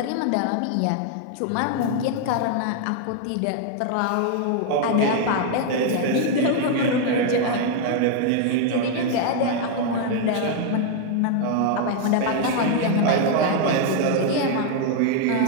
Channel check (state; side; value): different; both; correlation 0.00